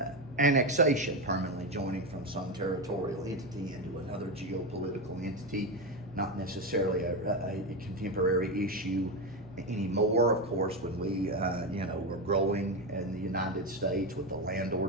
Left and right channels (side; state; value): both; normal; correlation 0.13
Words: Annexation, permanently joining from some territorial entity into another geopolitical entity, not necessarily a contemporary issue anymore. Of course, when we, you know, were growing in the United States with the land